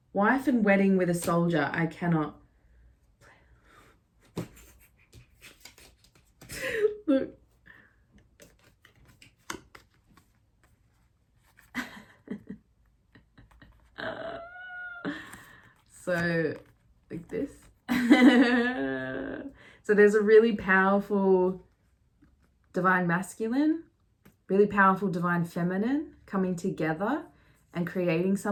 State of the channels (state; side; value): identical; both; correlation 1.00